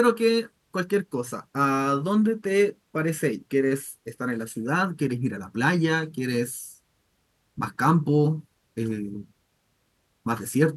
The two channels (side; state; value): both; identical; correlation 1.00